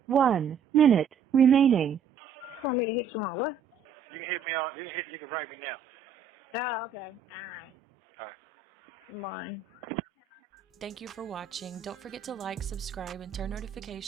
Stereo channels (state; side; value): quieter; left; 6.1 dB